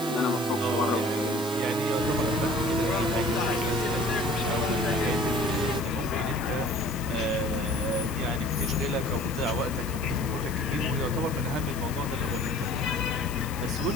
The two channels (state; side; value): noise; left; hiss, 13 dB below the sound